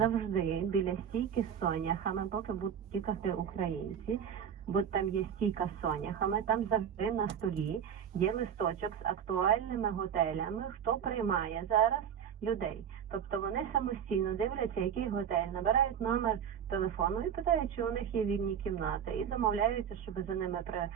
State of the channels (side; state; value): left; quieter; 8.4 dB